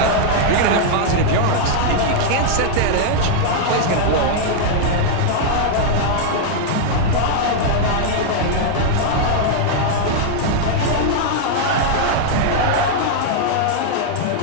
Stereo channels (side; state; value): both; different; correlation -0.01